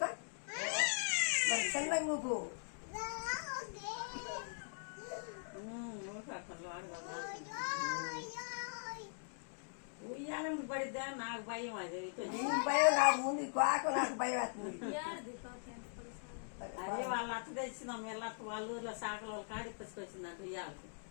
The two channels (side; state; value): right; silent; digital silence